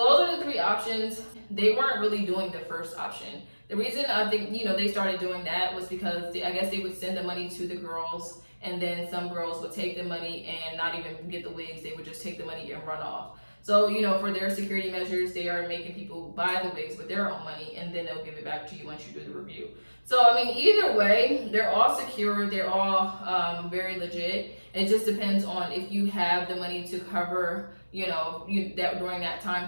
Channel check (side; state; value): both; inverted; correlation -1.00